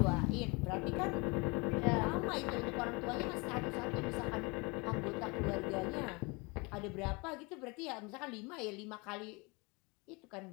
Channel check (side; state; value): right; quieter; 27.9 dB